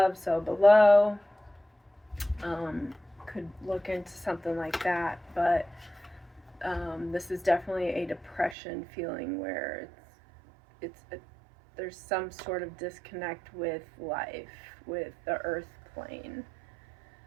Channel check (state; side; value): drops out; left; at 8.6 s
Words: so below. Could look into something like that, but this is definitely a depression feeling where there's some sort of disconnect with life, with the earth plane.